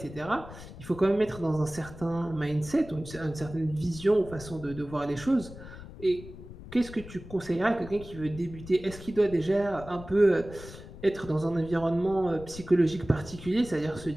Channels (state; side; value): noise; left; rumble, 15 dB below the sound